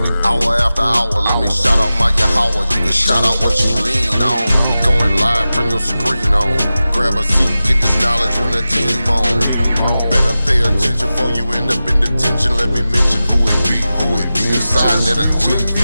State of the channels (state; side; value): inverted; both; correlation -0.94